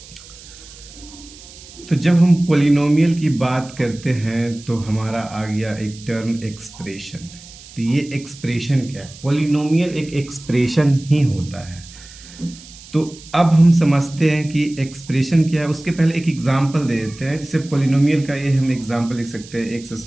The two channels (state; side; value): noise; right; hiss, 19 dB below the sound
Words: तो जब हम पोलिनोमियल की बात करते हैं तो हमारा आ गया एक टर्म एक्सप्रेशन। तो ये एक्सप्रेशन क्या है? पोलिनोमियल एक एक्सप्रेशन ही होता है। तो अब हम समझते हैं कि एक्सप्रेशन क्या है। उसके पहले एक एग्जांपल दे देते हैं। जैसे पोलिनोमियल का ये हम एग्जांपल लिख सकते हैं x²